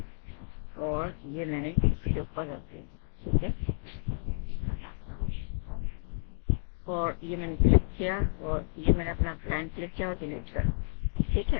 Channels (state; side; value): silent; right; digital silence